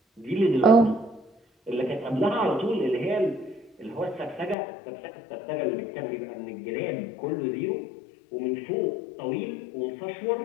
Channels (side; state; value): right; drops out; at 4.5 s